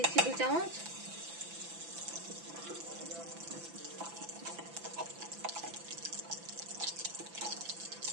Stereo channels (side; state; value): left; late; 5.9 ms